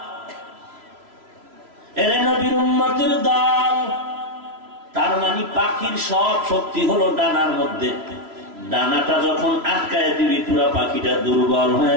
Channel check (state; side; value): late; left; 3.0 ms